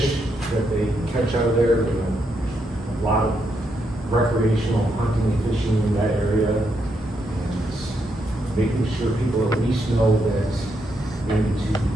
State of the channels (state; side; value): normal; both; correlation 0.79